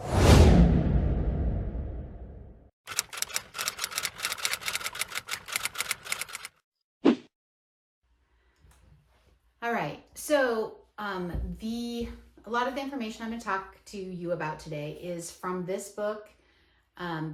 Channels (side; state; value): both; identical; correlation 1.00